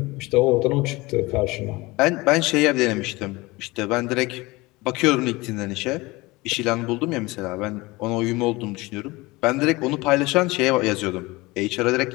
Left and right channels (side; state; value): right; quieter; 22.2 dB